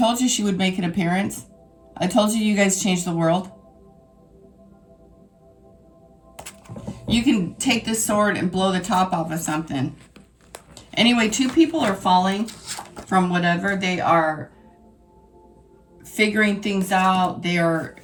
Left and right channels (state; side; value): identical; both; correlation 1.00